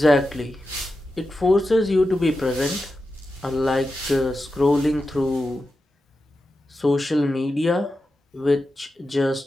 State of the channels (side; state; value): both; normal; correlation 0.91